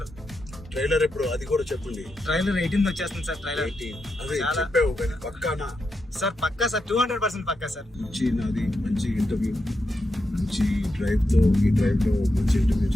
ఎప్పుడు అది కూడా చెప్పండి. ట్రైలర్ 18th వచ్చేస్తుంది సార్. ట్రైలర్ అదే చెప్పావు కానీ పక్కానా సార్? పక్కా సార్, 200% పక్కా సార్. నాది మంచి ఇంటర్వ్యూ, మంచి ఈ డ్రైవ్లో మంచి ఇంటర్వ్యూ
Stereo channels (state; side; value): normal; both; correlation 0.86